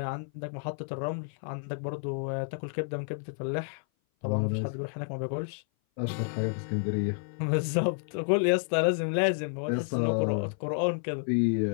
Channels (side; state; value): right; silent; 57 dB below the other